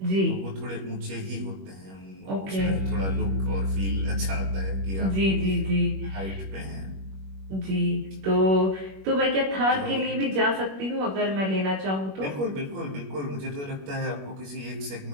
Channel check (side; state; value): left; late; 21 ms